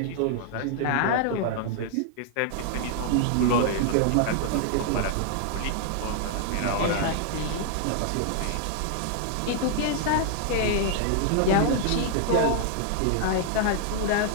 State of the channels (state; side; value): different; both; correlation -0.01